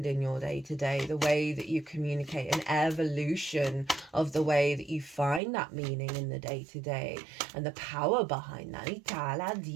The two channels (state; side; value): drops out; left; at 5.4 s